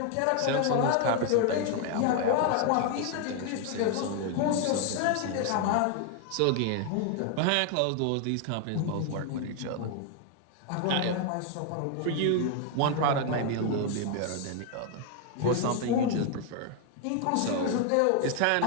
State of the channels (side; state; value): both; different; correlation 0.00